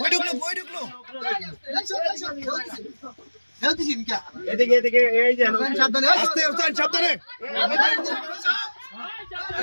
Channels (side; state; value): both; inverted; correlation -1.00